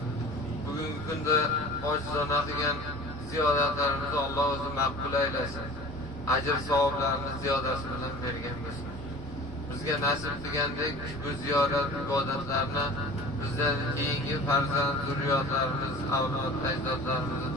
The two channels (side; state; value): both; normal; correlation 0.41